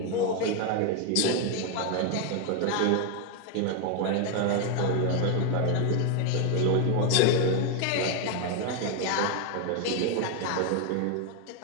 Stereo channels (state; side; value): different; both; correlation 0.01